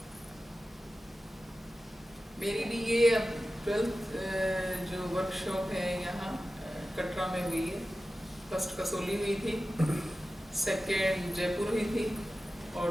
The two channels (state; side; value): normal; both; correlation 0.94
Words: मेरी भी ये 12th जो वर्कशॉप है यहाँ कटरा में हुई है। फर्स्ट कसोली हुई थी, सेकेंड जयपुर हुई थी और